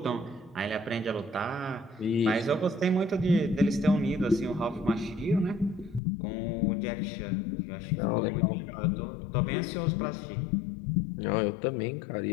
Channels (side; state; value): right; drops out; at 6.0 s